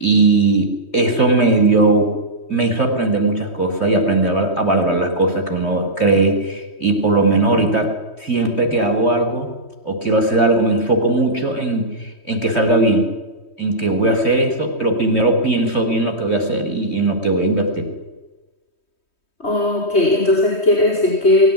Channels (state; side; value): late; right; 3.2 ms